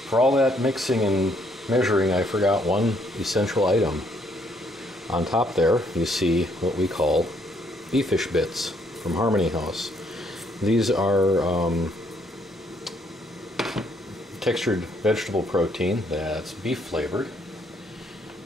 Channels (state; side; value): normal; both; correlation 0.69